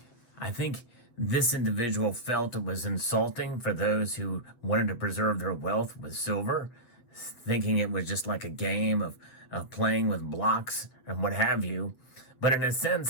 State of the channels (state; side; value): late; right; 7.8 ms